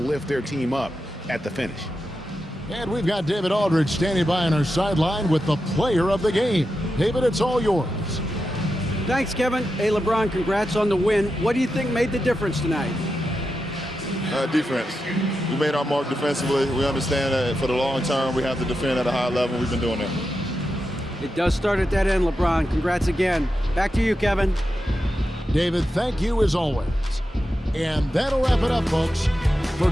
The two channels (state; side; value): normal; both; correlation 0.89